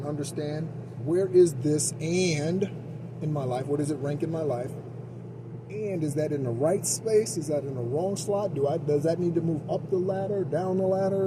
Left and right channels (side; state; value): both; identical; correlation 1.00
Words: understand, where is this and in my life? What does it rank in my life? And is that in the right space? Is that in the wrong slot? Does that need to move up the ladder, down the